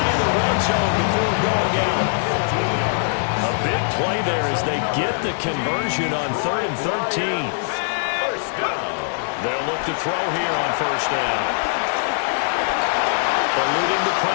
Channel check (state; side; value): silent; right; digital silence